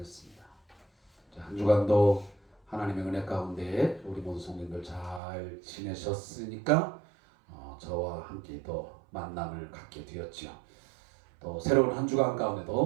자, 한 주간도 하나님의 은혜 가운데 우리 모든 성도님들 잘 지내셨으니까 저와 함께 또 만남을 갖게 되었지요. 또 새로운 한 주간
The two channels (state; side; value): drops out; left; at 5.2 s